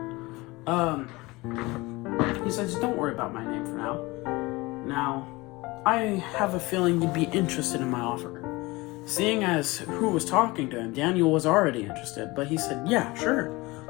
He says, don't worry about my name for now. Now, I have a feeling you'd be interested in my offer. Seeing as who was talking to him, Daniel was already interested, but he said, yeah, sure.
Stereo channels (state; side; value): quieter; right; 22.5 dB